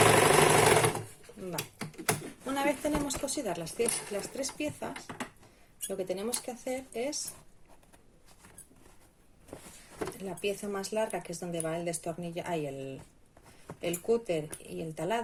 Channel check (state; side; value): identical; both; correlation 1.00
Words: Una vez tenemos cosidas las 3 piezas, lo que tenemos que hacer es la pieza más larga, que es donde va el destornillador, el cúter y el